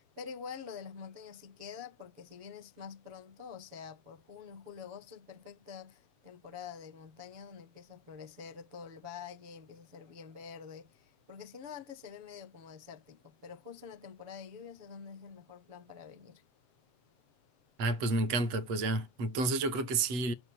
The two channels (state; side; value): late; left; 8.1 ms